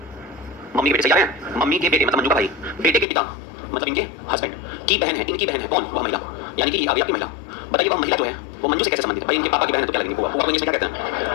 मम्मी के बेटे सही आ रहे हैं? मम्मी के बेटे मतलब मंजू का भाई, बेटे के पिता मतलब इनके हस्बैंड की बहन है, इनकी बहन है। कौन? वह महिला, यानी कि ये आपकी महिला। बताइए वह महिला जो है वो मंजू से कैसे संबंधित है? भाई इनके पापा की बहन है तो क्या लगेंगे? वो इंग्लिश में क्या कहते हैं?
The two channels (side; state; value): right; drops out; at 3.1 s